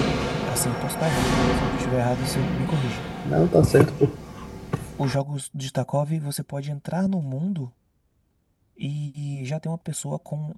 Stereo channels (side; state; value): both; identical; correlation 1.00